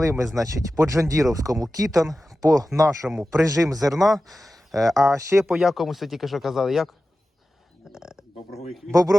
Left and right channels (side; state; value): both; normal; correlation 0.94